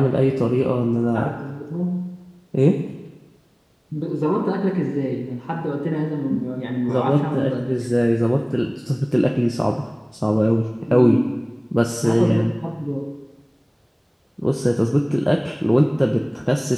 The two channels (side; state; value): both; identical; correlation 1.00